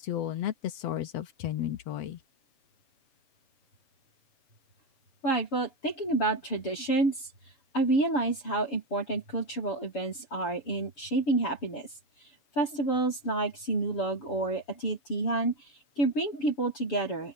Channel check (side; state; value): right; late; 6.9 ms